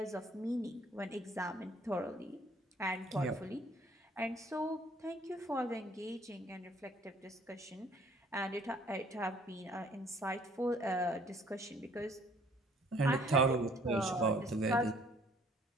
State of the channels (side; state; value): both; normal; correlation 0.59